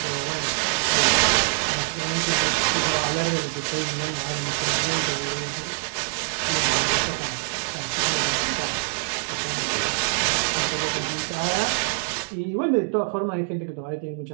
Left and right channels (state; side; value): silent; left; digital silence